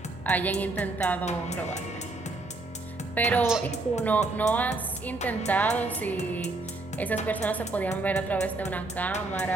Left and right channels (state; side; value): quieter; left; 3.1 dB